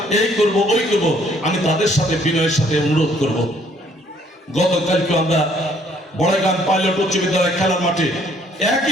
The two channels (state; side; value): normal; both; correlation 0.63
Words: এই করব ওই করব, আমি তাদের সাথে বিনয়ের সাথে অনুরোধ করব। গতকালকে আমরা বড়াইগ্রাম পাইলট উচ্চ বিদ্যালয় খেলার মাঠে